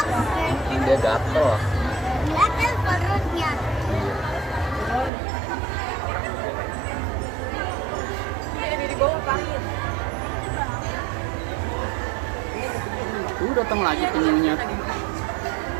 Dia gatel. Gatel perutnya. Tuh datang lagi penyunya.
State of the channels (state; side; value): drops out; left; at 5.1 s